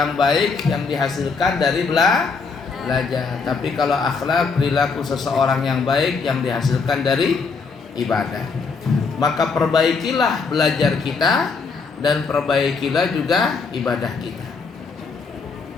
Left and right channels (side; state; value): right; quieter; 4.8 dB